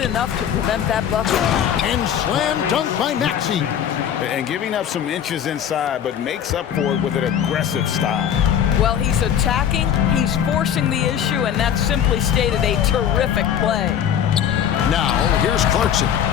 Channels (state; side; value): quieter; right; 9.2 dB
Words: to prevent that bucket. And slam dunk by Maxey. And giving up some inches inside, but makes up for it with an aggressive style. Well, he's attacking, he's forcing the issue, and that's simply stated a terrific play. Now, here's Clarkson.